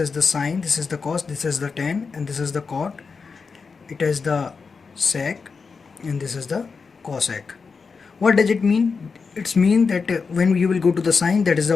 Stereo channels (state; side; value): quieter; right; 5.0 dB